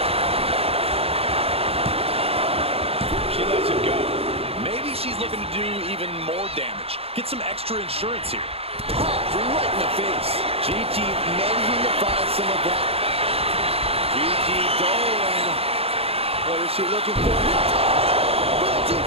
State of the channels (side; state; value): left; late; 0.28 ms